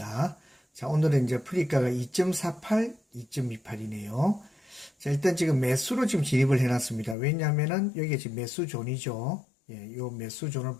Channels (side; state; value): right; drops out; at 7.2 s